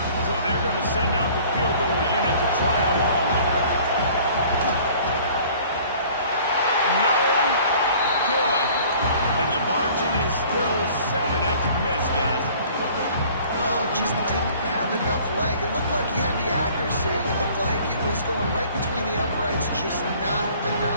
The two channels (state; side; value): inverted; both; correlation -0.51